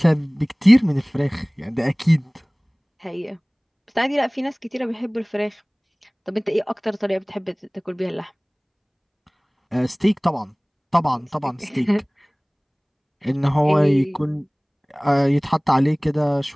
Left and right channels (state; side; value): identical; both; correlation 1.00